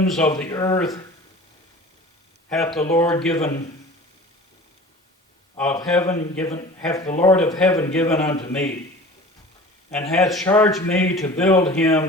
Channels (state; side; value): normal; both; correlation 0.41